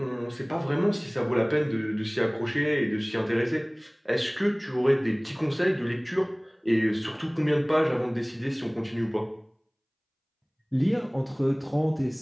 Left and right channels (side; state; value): both; identical; correlation 1.00